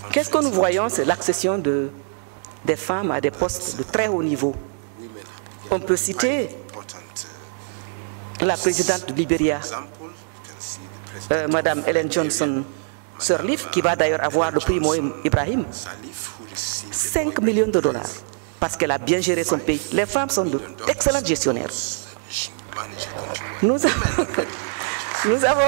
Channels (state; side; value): silent; left; 63 dB below the other